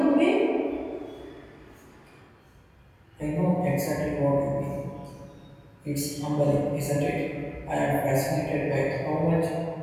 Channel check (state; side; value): identical; both; correlation 1.00